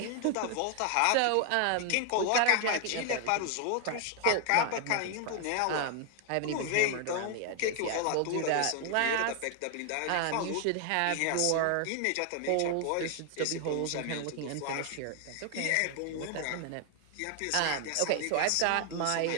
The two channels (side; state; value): both; different; correlation 0.00